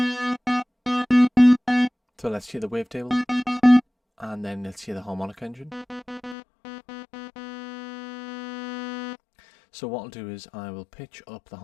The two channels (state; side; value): drops out; right; at 6.4 s